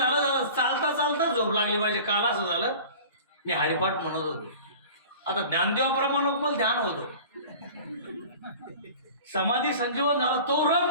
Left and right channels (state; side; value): inverted; both; correlation -0.41